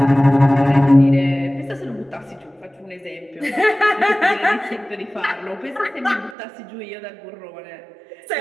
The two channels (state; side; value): drops out; left; at 6.4 s